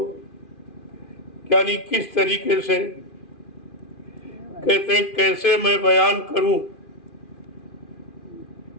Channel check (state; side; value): late; right; 2.4 ms